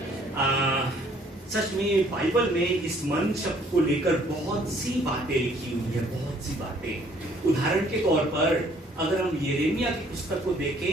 सच में बाइबल में इस मन शब्द को लेकर बहुत सी बातें लिखी हुई है, बहुत सी बातें। उदाहरण के तौर पर अगर हम यिर्मयाह की पुस्तक को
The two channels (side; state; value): both; normal; correlation 0.61